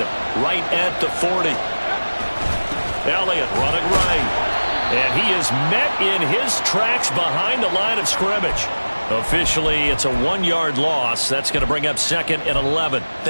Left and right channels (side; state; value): both; inverted; correlation -1.00